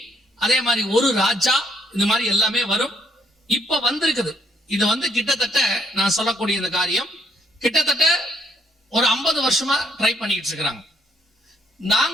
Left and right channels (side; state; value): both; normal; correlation 0.69